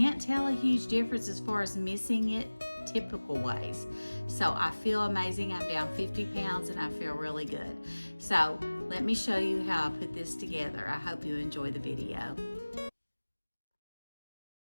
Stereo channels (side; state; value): both; inverted; correlation -1.00